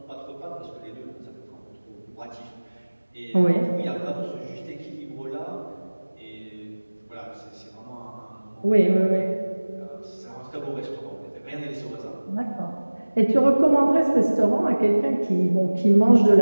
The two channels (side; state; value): both; inverted; correlation -1.00